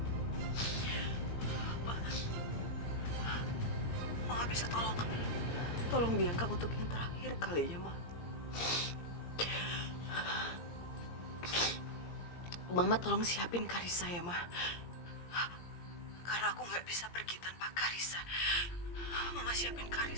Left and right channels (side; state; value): right; late; 17 ms